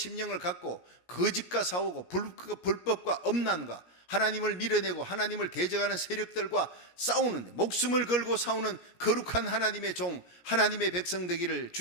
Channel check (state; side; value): late; right; 17 ms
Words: 갖고 거짓과 싸우고 불법과 엄난과 하나님을 밀어내고 하나님을 대적하는 세력들과 싸우는데 목숨을 걸고 싸우는 거룩한 하나님의 종, 하나님의 백성 되기를